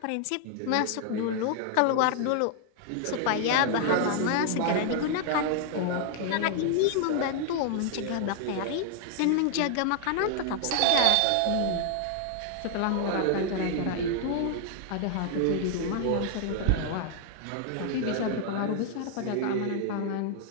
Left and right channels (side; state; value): both; different; correlation 0.00